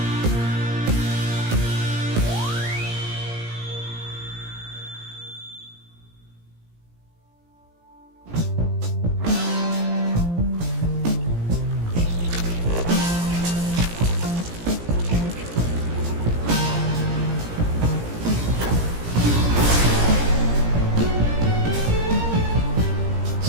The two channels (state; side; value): late; left; 17 ms